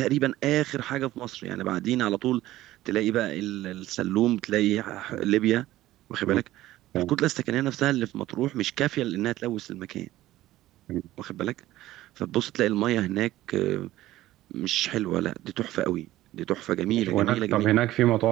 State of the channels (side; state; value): left; quieter; 15.5 dB